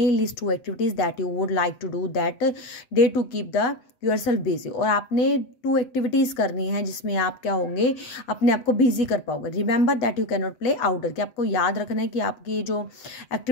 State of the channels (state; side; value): late; right; 8.0 ms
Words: List 2 activities that you would like to do that day to keep the yourself busy. और आपने 2 एक्टिविटीज़ करनी है जिसमें आप क्या होंगे, अपने आप को बिजी कर पाओगे. Remember that you can not play outdoor, कि आपको याद रखना है कि आपकी जो